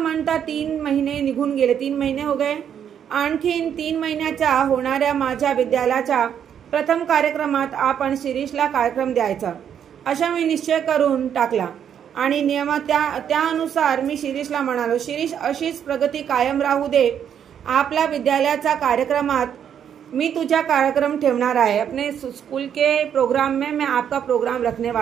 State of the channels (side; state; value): left; quieter; 8.8 dB